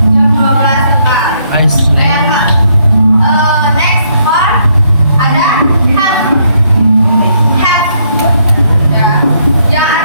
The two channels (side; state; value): both; inverted; correlation -0.71